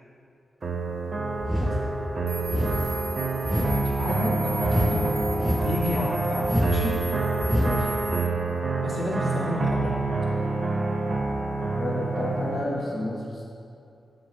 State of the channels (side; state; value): both; normal; correlation 0.86